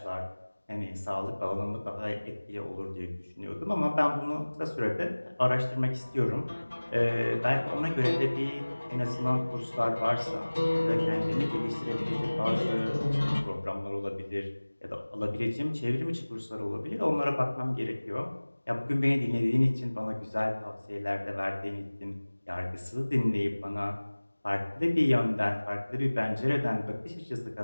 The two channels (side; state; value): both; inverted; correlation -1.00